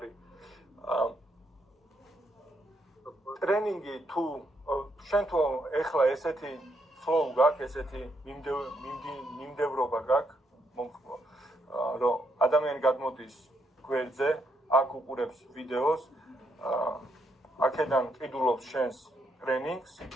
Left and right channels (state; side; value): normal; both; correlation 0.76